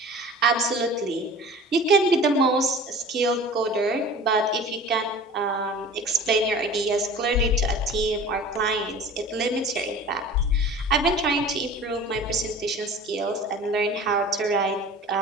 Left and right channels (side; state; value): both; normal; correlation 0.42